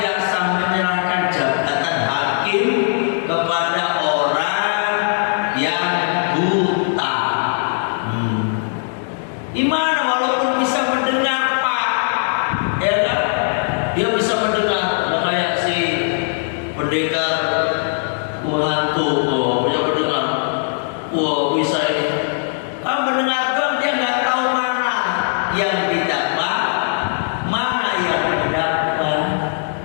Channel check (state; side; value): silent; right; digital silence